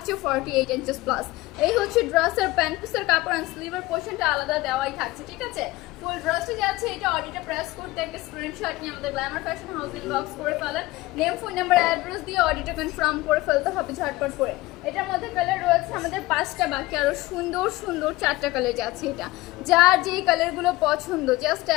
48 ইঞ্চেস প্লাস। এই হচ্ছে ড্রেসের প্যান্ট পিসের কাপড় অ্যান্ড স্লিভের পোর্শনটা আলাদা দেওয়াই থাকছে, ঠিক আছে। ফুল ড্রেসটা যাচ্ছে এটা অডিটে প্রেস করতে একটা স্ক্রিনশট নিয়ে আমাদের গ্ল্যামার ফ্যাশন হাউস ইনবক্স করে ফেলেন, নেম ফোন নাম্বার অ্যাড্রেস দিয়ে অডিটে কনফার্ম করে ফেলতে হবে ঝটপট করে। এটার মধ্যে কালার রয়েছে আমাদের 5টা, বাকি আরো সুন্দর সুন্দর 4টা কালার যাচ্ছে। এটা যার যেই কালারগুলো পছন্দ জাস্ট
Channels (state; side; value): quieter; right; 19.5 dB